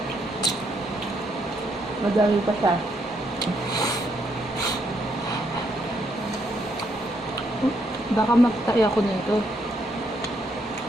Madami pa siya. Baka magtayo ako nito.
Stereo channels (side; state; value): both; normal; correlation 0.75